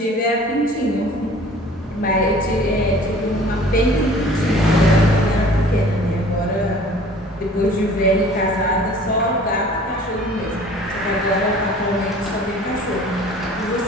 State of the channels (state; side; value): normal; both; correlation 0.49